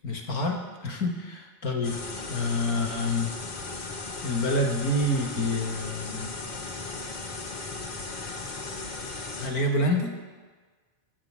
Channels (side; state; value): right; late; 4.4 ms